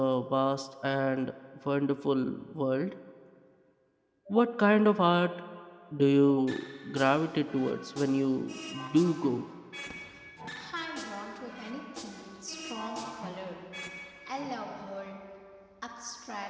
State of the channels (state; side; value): identical; both; correlation 1.00